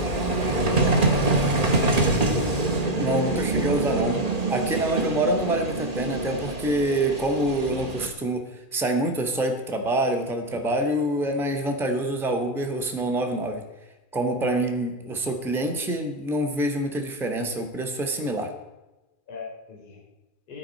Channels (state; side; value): late; right; 2.4 ms